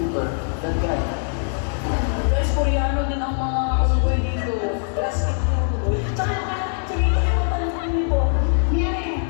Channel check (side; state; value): right; silent; digital silence